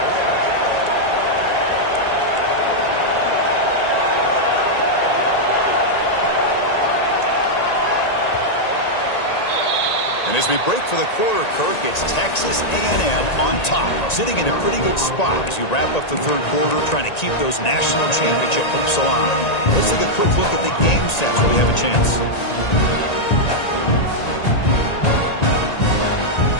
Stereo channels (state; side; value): late; right; 1.9 ms